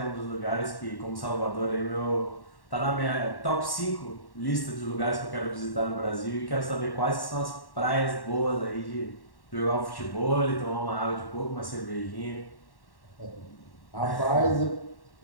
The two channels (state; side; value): late; right; 1.1 ms